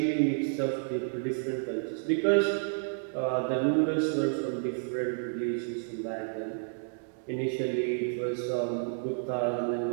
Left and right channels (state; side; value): silent; left; digital silence